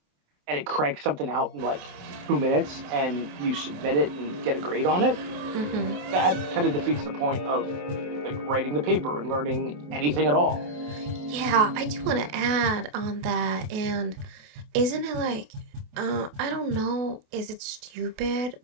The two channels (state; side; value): late; left; 27 ms